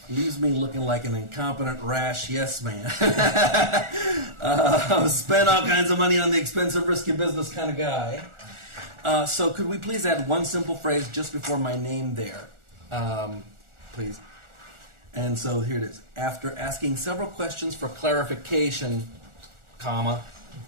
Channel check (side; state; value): left; late; 1.4 ms